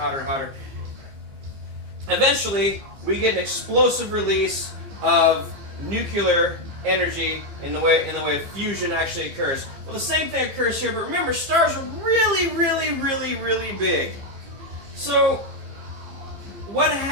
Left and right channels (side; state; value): left; late; 15 ms